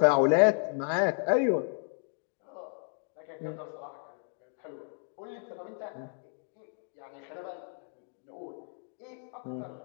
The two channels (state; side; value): silent; right; 56 dB below the other